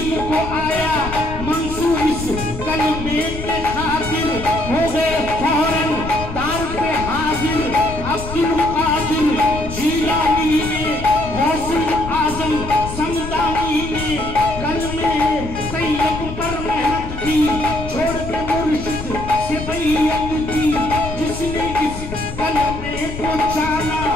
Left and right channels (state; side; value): noise; left; rumble, 9 dB below the sound